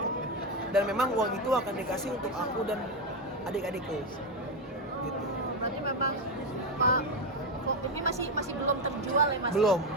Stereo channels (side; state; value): both; normal; correlation 0.10